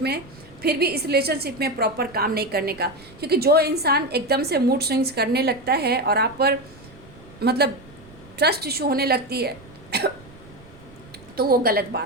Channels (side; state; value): right; noise; rumble, 22 dB below the sound